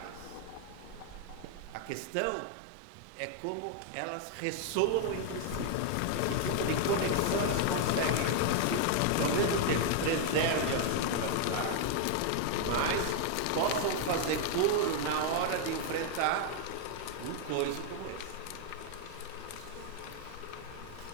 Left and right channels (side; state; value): both; different; correlation 0.00